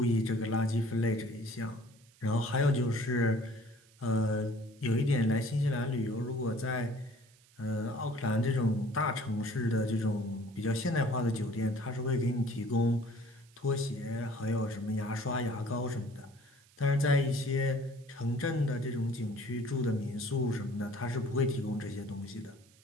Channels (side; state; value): right; noise; hiss, 29 dB below the sound